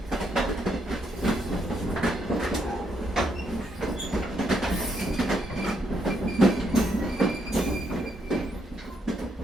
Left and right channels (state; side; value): normal; both; correlation 0.75